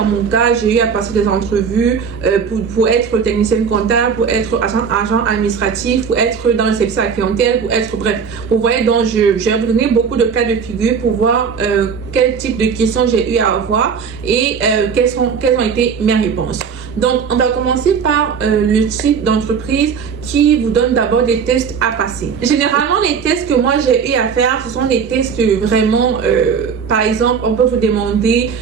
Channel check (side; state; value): left; quieter; 6.4 dB